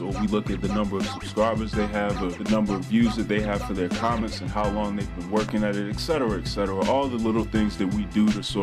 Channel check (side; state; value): both; identical; correlation 1.00